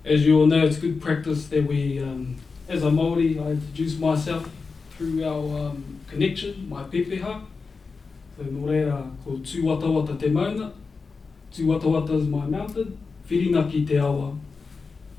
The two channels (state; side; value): quieter; right; 4.6 dB